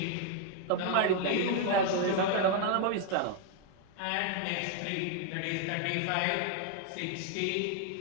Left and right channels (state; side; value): different; both; correlation 0.00